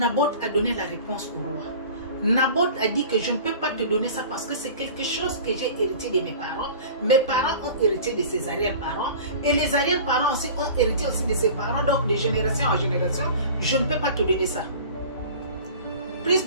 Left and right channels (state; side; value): inverted; both; correlation -0.40